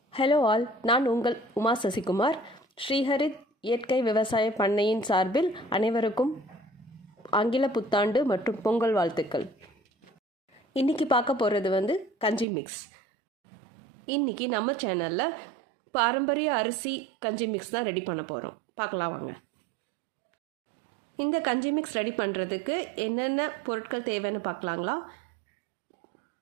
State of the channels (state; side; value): drops out; left; at 12.5 s